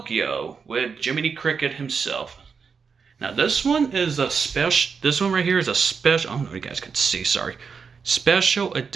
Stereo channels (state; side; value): quieter; left; 5.7 dB